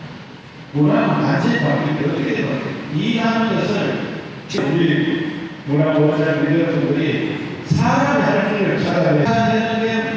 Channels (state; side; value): identical; both; correlation 1.00